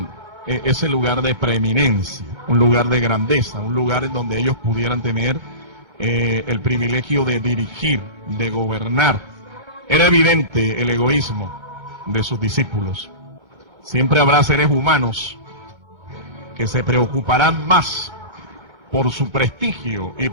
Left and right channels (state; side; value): late; left; 2.2 ms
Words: ese lugar de preeminencia, un lugar de grandeza, un lugar en donde ellos pudieran tener el privilegio de dirigir, de gobernar. Era evidente el egoísmo de sus discípulos. Siempre habrá seres humanos que se preocuparán más por su prestigio y